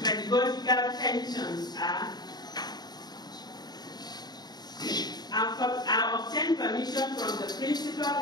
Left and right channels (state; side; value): late; right; 0.20 ms